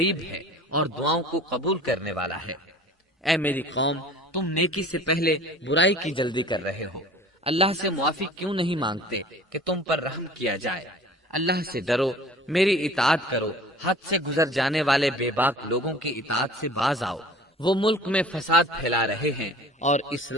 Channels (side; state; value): both; normal; correlation 0.45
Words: ہے اور دعاؤں کو قبول کرنے والا ہے۔ اے میری قوم، تم نیکی سے پہلے برائی کی جلدی کر رہے ہو، اللہ سے معافی کیوں نہیں مانگتے کہ تم پر رحم کیا جائے؟ اللہ سے ڈرو، میری اطاعت کرو، حد سے گزر جانے والے بے باک لوگوں کی اطاعت سے باز آؤ، وہ ملک میں فساد پھیلا رہے ہیں اور